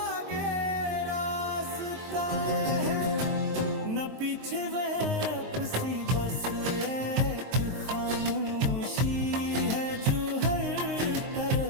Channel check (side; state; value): left; late; 23 ms